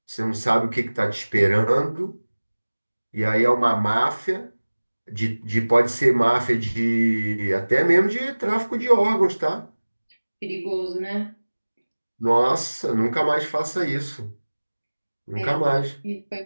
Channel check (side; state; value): both; inverted; correlation -1.00